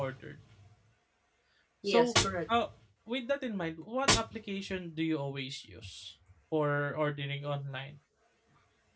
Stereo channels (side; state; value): both; identical; correlation 1.00